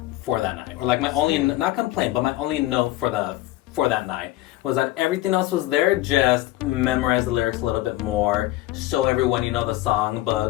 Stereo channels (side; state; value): right; quieter; 16.6 dB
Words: for that night. Or like my only, not complaint, but my only note for that night was that everything else was there, just memorize the lyrics a little bit more, show everyone you know the song,